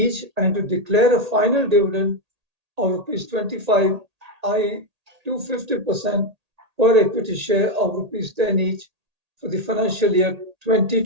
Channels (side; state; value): left; late; 1.8 ms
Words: and to declare a final dividend of rupees 25, i.e. 250% per equity share of rupees 10 each for the financial year